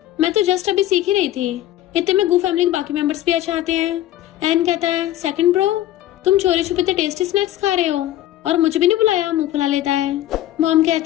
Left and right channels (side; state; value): right; quieter; 13.7 dB